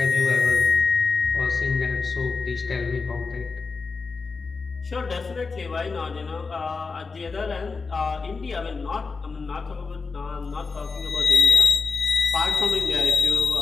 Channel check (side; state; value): right; quieter; 4.5 dB